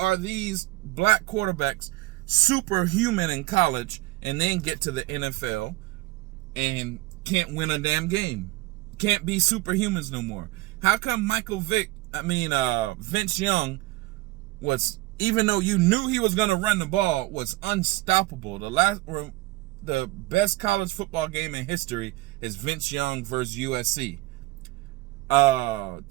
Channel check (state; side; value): quieter; left; 20.0 dB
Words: these black quarterbacks superhuman in college and then get to the NFL and can't win a damn game? Can't be superhumans no more. How come Vince Young was, even though you knew he was going to run the ball, was unstoppable? The best college football game in history is Vince Young versus USC.